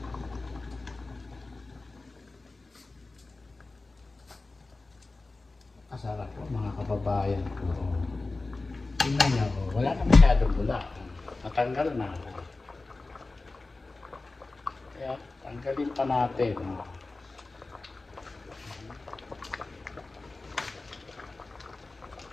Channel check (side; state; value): right; quieter; 3.4 dB